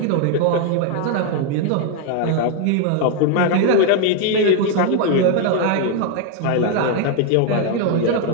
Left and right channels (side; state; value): both; different; correlation 0.00